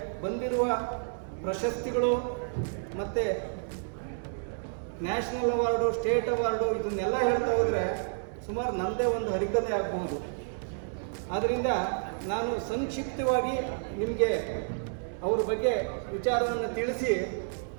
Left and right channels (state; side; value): silent; left; digital silence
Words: ಬಂದಿರುವ ಪ್ರಶಸ್ತಿಗಳು ಮತ್ತು ನ್ಯಾಷನಲ್ ಅವಾರ್ಡು, ಸ್ಟೇಟ್ ಅವಾರ್ಡು ಇದನ್ನೆಲ್ಲ ಹೇಳ್ತಾ ಹೋದರೆ ಸುಮಾರು ನನ್ನದೇ ಒಂದು ಹರಿಕತೆ ಆಗ್ಬೋದು. ಆದ್ದರಿಂದ ನಾನು ಸಂಕ್ಷಿಪ್ತವಾಗಿ ನಿಮಗೆ ಅವ್ರ ಬಗ್ಗೆ ವಿಚಾರವನ್ನು ತಿಳಿಸಿ